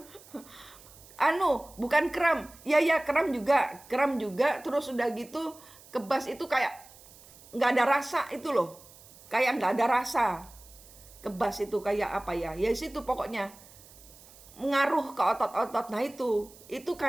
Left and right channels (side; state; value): right; noise; hiss, 22 dB below the sound